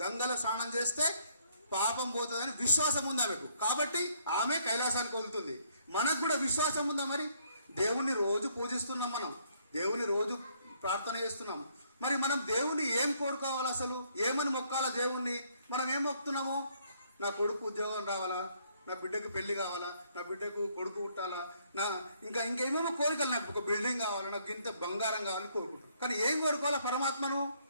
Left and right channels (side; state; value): both; inverted; correlation -0.67